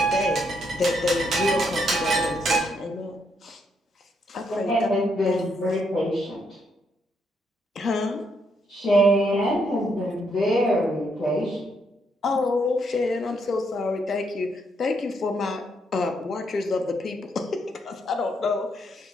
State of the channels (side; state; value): both; normal; correlation 0.75